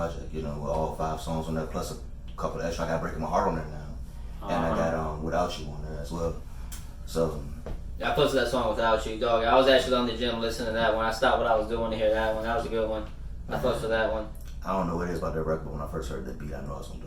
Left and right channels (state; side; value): identical; both; correlation 1.00